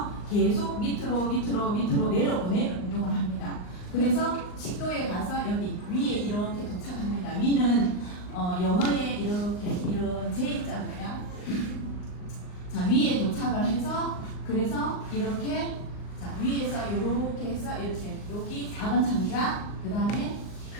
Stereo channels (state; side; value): late; right; 39 ms